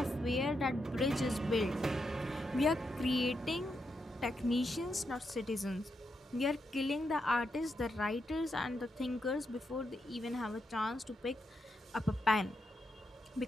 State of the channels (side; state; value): both; normal; correlation 0.83